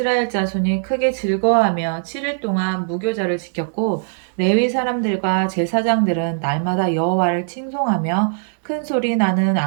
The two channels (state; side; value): silent; left; digital silence